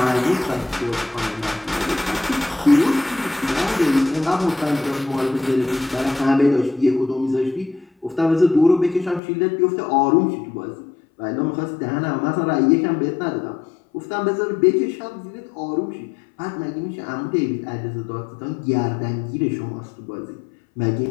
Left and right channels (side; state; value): right; drops out; at 9.2 s